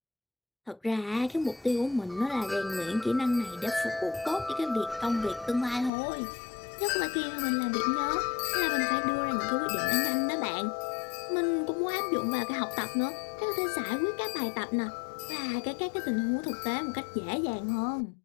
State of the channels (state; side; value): drops out; right; at 5.9 s